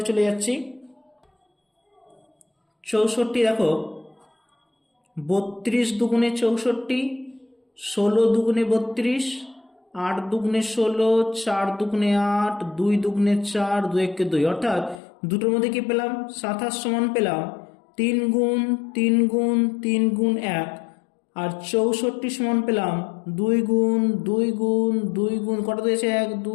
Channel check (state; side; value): drops out; right; at 15.0 s